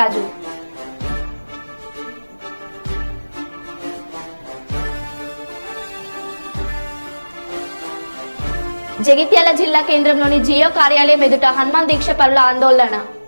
జగిత్యాల జిల్లా కేంద్రంలోని జియో కార్యాలయం ఎదుట హనుమాన్ దీక్ష పరుల ఆందోళన.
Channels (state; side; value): inverted; both; correlation -1.00